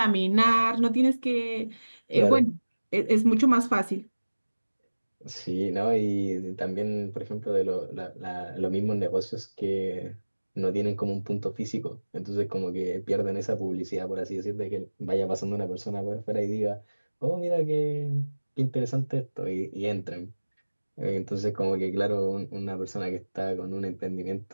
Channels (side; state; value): both; inverted; correlation -1.00